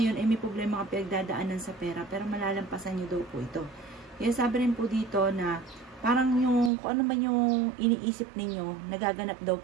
ay may problema ka pinagdadaanan sa pera pero malalampasan nyo daw po ito. Kaya sabi rin po dito na parang yung kung ano man yung iniisip ninyo, nagaganap daw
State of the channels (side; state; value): left; drops out; at 6.7 s